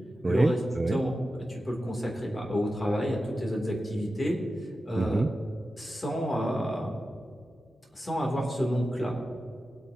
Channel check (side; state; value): both; normal; correlation 0.92